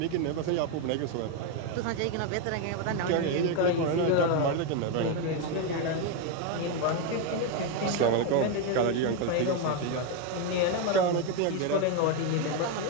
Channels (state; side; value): different; both; correlation 0.02